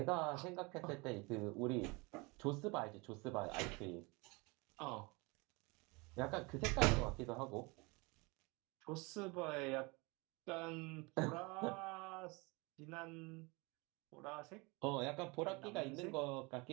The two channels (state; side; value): quieter; left; 26.9 dB